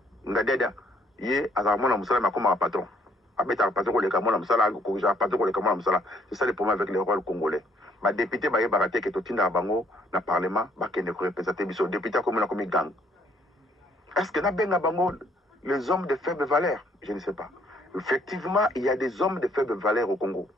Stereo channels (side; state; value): both; normal; correlation 0.65